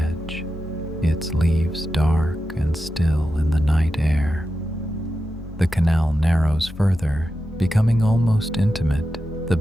its leaves dark and still in the night air. The canal narrows further, becoming almost intimate, the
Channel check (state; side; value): normal; both; correlation 0.90